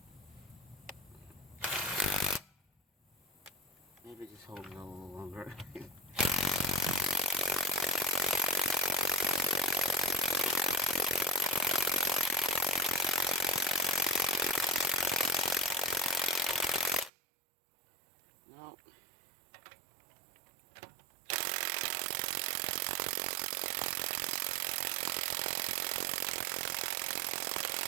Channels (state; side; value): drops out; left; at 17.1 s